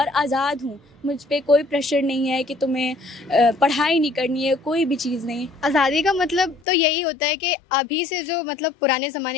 आज़ाद हूँ। मुझ पे कोई प्रेशर नहीं है कि तुम्हें पढ़ाई नहीं करनी है, कोई भी चीज़ नहीं। आज़ादी का मतलब तो यही होता है कि अभी से जो मतलब पुराने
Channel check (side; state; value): right; drops out; at 6.6 s